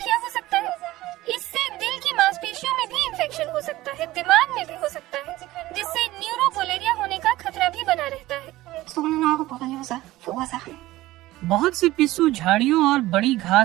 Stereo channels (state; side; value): quieter; left; 17.0 dB